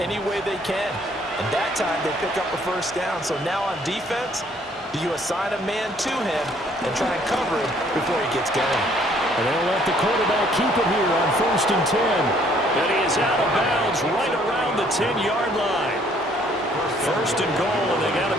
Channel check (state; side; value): normal; both; correlation 0.62